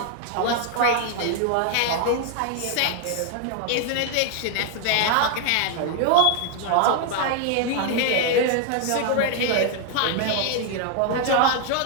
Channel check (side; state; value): both; different; correlation 0.00